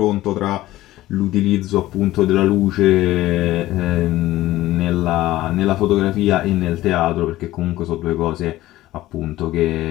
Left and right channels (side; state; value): right; quieter; 16.0 dB